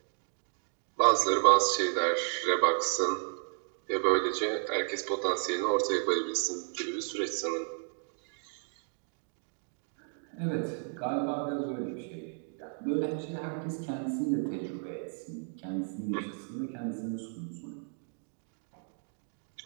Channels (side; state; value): left; silent; 56 dB below the other